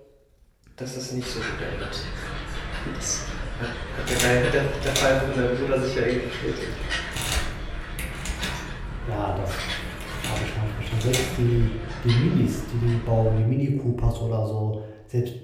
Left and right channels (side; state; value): both; identical; correlation 1.00